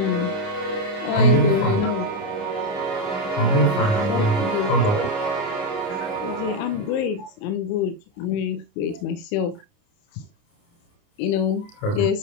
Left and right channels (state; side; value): late; right; 29 ms